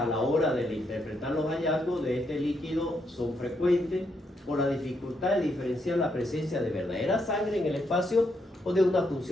la hora de interpretar los hallazgos de este líquido son frecuentes por la dificultad de diferenciar la presencia de verdadera sangre en el espacio o de una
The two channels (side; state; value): both; normal; correlation 0.78